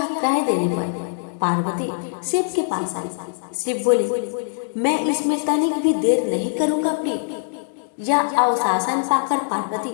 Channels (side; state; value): right; silent; digital silence